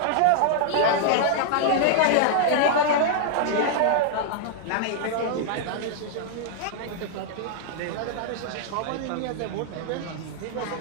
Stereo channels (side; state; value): both; different; correlation -0.01